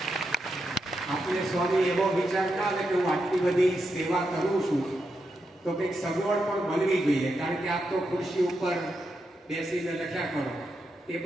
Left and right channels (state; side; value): normal; both; correlation 0.85